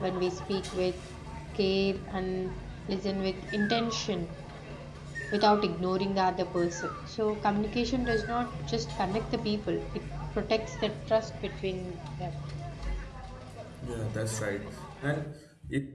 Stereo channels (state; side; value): identical; both; correlation 1.00